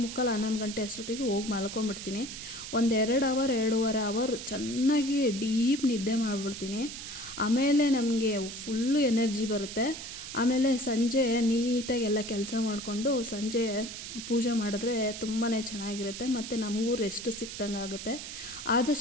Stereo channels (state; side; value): noise; right; hiss, 9 dB below the sound